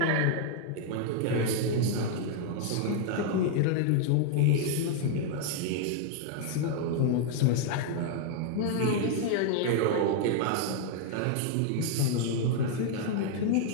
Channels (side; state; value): both; different; correlation 0.00